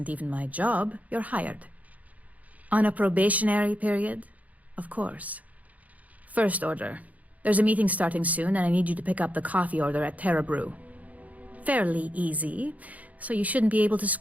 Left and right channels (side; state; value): left; late; 0.073 ms